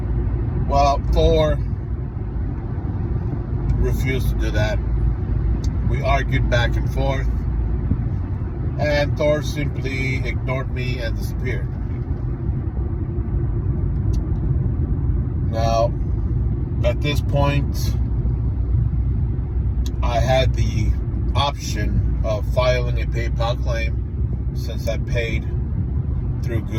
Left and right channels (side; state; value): both; identical; correlation 1.00